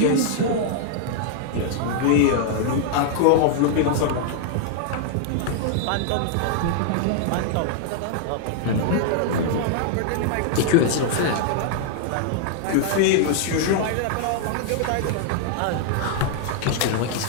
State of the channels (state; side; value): different; both; correlation 0.00